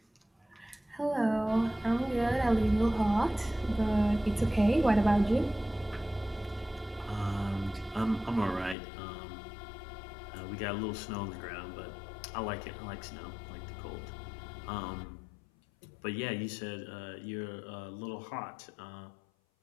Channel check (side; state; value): right; drops out; at 8.8 s